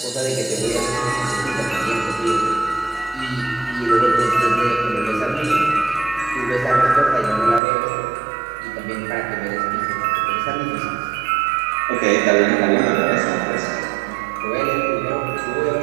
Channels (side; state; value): left; drops out; at 7.6 s